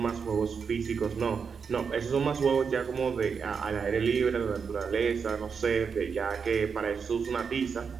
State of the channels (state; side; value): quieter; left; 6.0 dB